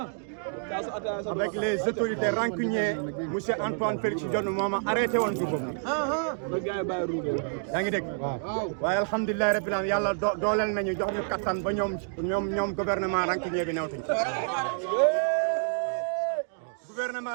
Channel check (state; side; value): silent; left; digital silence